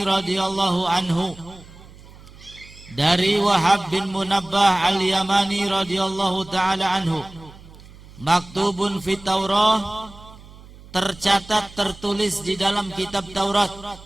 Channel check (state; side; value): noise; right; hum, 20 dB below the sound